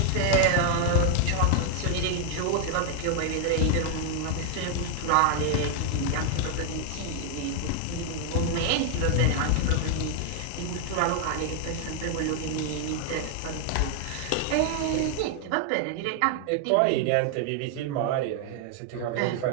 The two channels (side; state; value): both; different; correlation 0.00